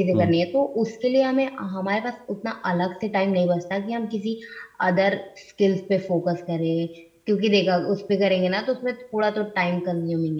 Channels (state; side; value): identical; both; correlation 1.00